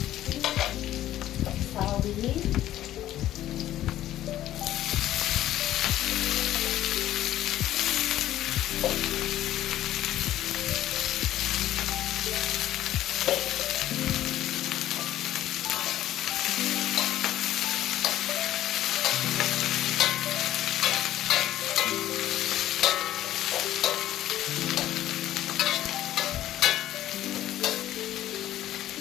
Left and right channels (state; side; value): quieter; right; 13.3 dB